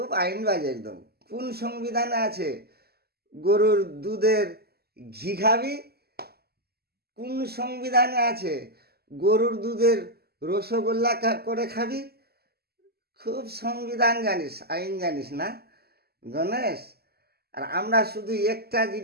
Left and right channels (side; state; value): left; late; 0.46 ms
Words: আইনবাজ একদম। কোন সংবিধানে আছে গরুর দুধের ঘি খাবি? কোন সংবিধানে আছে গরুর দুধের রসগোল্লা করে খাবি? খুব সংবিধান জানিস, আইন জানিস না গণেশ। আর আমরা শুধু একটা